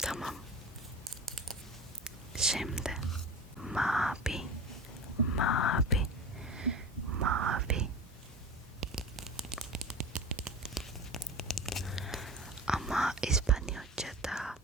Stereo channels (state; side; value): normal; both; correlation 0.32